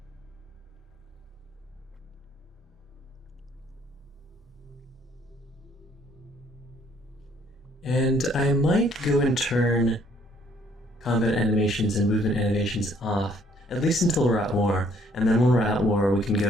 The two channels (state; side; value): normal; both; correlation 0.64